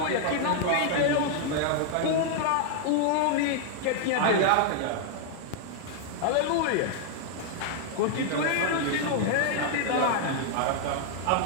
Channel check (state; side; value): different; both; correlation -0.01